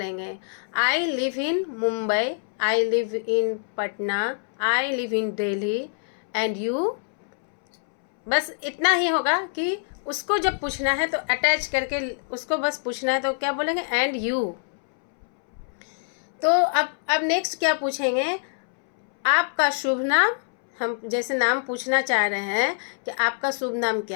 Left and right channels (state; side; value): silent; right; 62 dB below the other